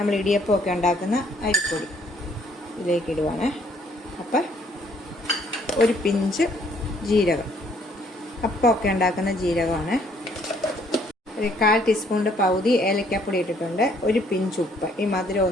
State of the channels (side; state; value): both; normal; correlation 0.64